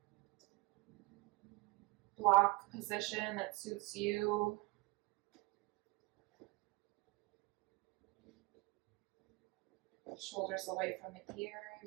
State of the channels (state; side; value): quieter; left; 26.3 dB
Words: block position that suits you. Shoulders away from the